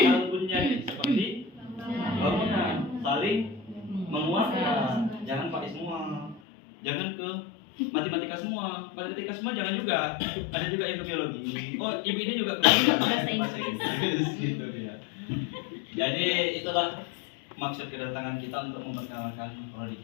bunyani, seperti bangunan saling menguatkan. Jangan pakai semua, jangan ke matematika semua jangan juga. Ada juga yang ke biologi. Oh, ibu ini juga ke bahasa Inggris gitu ya. Jadi itulah maksud kedatangan kita, untuk memperkenalkan prodi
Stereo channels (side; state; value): right; drops out; at 6.4 s